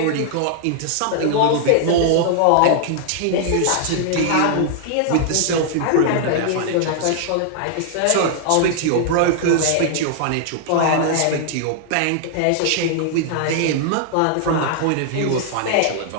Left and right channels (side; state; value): both; different; correlation -0.01